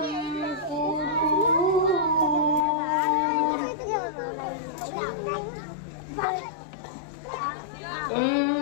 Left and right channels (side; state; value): right; drops out; at 2.7 s